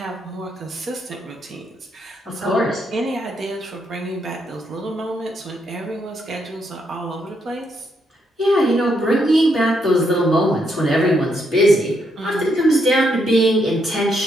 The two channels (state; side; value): normal; both; correlation 0.77